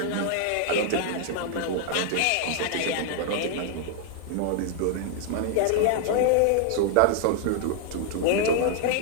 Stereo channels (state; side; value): different; both; correlation 0.00